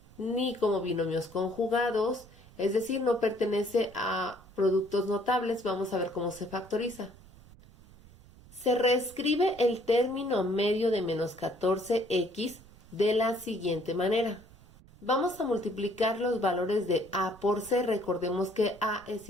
ni como binomios conjugados, es decir, no pertenece a productos notables. Vamos a ver cómo se factoriza. Se reescribe el término medio de menos 14x de la siguiente manera. Vamos a multiplicar los valores de a por c. Recordemos que a es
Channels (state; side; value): noise; right; rumble, 23 dB below the sound